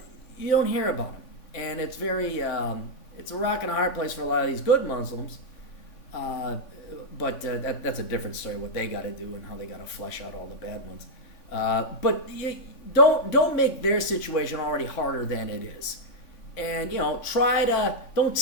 You don't hear about him. And it's very, it's a rock and a hard place for a lot of these good Muslims. But that's a different story, what they got to do and how they got to flesh out all the bad ones. But you don't make their situation already harder than it is. And, don't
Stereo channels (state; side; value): late; right; 3.5 ms